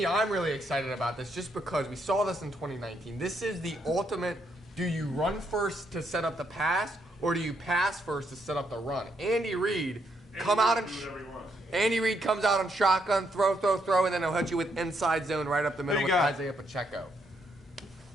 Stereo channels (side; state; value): both; normal; correlation 0.76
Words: I'm really excited about this just because we saw this in 2019. This is the ultimate. Do you run first to set up the pass, or do you pass first to set up the run? Andy Reid Andy Reid comes out on shotgun, throw, and then he'll hit you with inside zone right up the middle with Isaiah Pacheco.